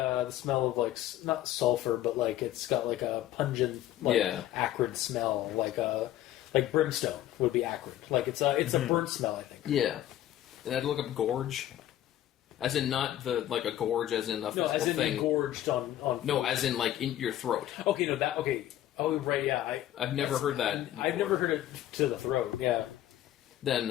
smell of like not sulfur, but like it's got like a pungent, like Yeah. acrid smell, like brimstone would be acrid. Like it's a burnt smell, I think. Yeah. And I had to look up gorge. As in not like a gorge as in a No, physical as in thing. gorged on. No, food. as in like in your throat. Okay, no, that okay. Oh, right, yeah. I've never heard that. I've before. never heard it to the throat. Yeah.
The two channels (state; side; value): quieter; right; 12.9 dB